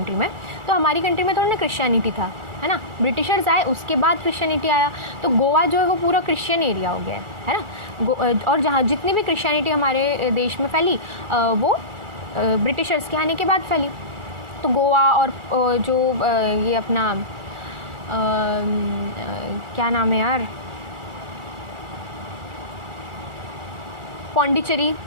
में, तो हमारी कंट्री में थोड़ा ना क्रिश्चियनिटी था, है ना, ब्रिटिशर्स आए उसके बाद क्रिश्चियनिटी आया, तो गोवा जो है वो पूरा क्रिश्चियन एरिया हो गया है ना। और जहाँ जितनी भी क्रिश्चियनिटी हमारे देश में फैली वो ब्रिटिशर्स के आने के बाद फैली। तो गोवा और जो ये अपना क्या नाम है यार, पौंडीचेरी,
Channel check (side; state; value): left; late; 2.3 ms